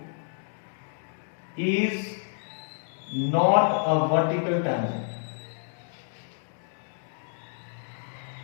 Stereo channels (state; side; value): silent; right; 59 dB below the other